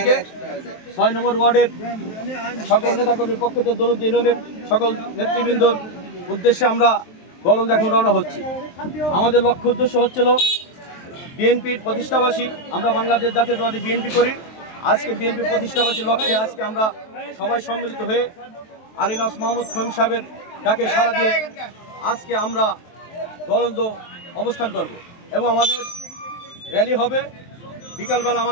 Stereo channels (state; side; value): late; right; 23 ms